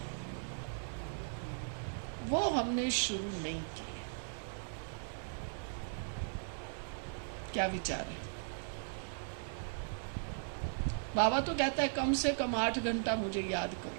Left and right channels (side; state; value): left; silent; 53 dB below the other